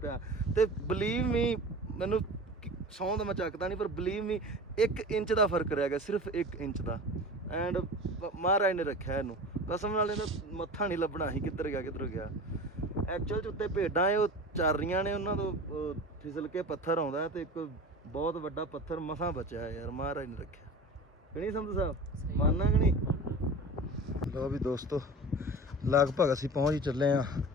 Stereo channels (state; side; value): normal; both; correlation 0.35